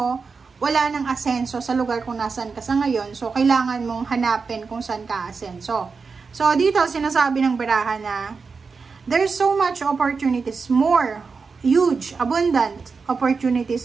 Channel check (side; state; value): left; quieter; 4.9 dB